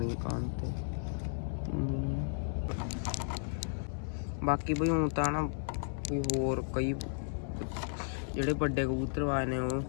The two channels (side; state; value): right; silent; 55 dB below the other